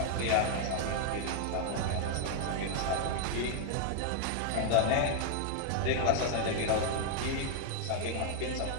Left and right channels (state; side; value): different; both; correlation 0.01